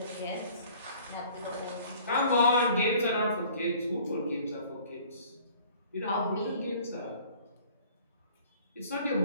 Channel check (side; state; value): both; inverted; correlation -0.52